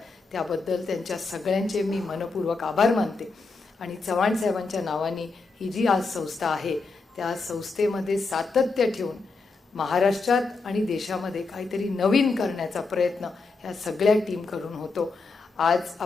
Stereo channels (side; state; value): right; quieter; 4.0 dB